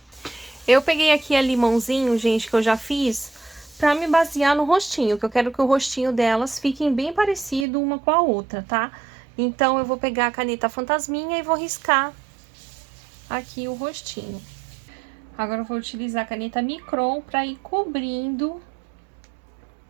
Eu peguei aqui a limãozinho, gente, que eu já fiz, pra me basear no rostinho, que eu quero que o rostinho delas fiquem bem parecido uma com a outra, tá? Então, eu vou pegar a caneta fantasminha e vou riscar aqui o rostinho. Agora, eu vou utilizar a caneta micron pra ir cobrindo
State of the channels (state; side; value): drops out; left; at 7.7 s